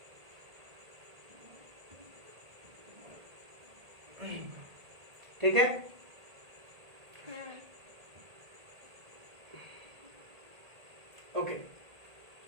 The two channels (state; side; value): late; left; 1.8 ms